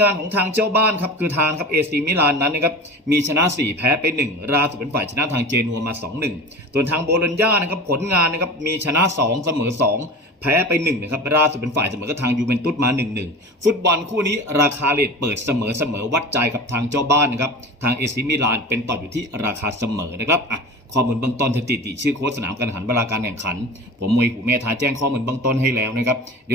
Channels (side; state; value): both; normal; correlation 0.34